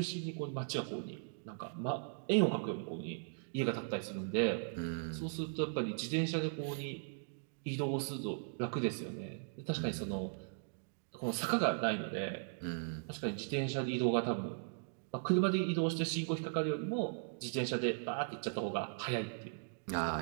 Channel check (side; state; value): left; silent; digital silence